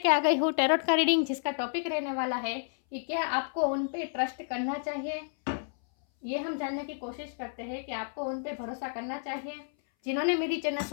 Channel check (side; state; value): right; silent; 57 dB below the other